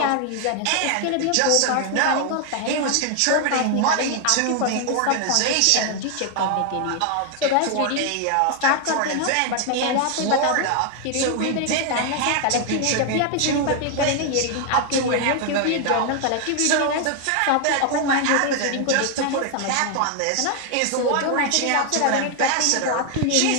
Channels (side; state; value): both; different; correlation 0.00